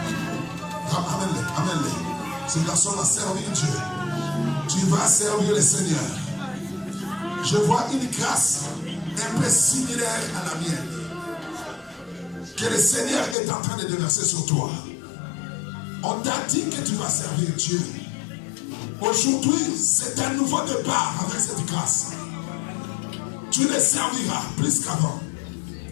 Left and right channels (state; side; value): drops out; right; at 13.4 s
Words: Amène-les, amène-les. Ce garçon va servir Dieu. Tu vas servir le Seigneur. Je vois une grâce un peu similaire à la mienne que le Seigneur est en train de déverser sur toi. On t'a dit que tu vas servir Dieu. Aujourd'hui, c'est un nouveau départ avec cette grâce. Tu le serviras plus qu'avant.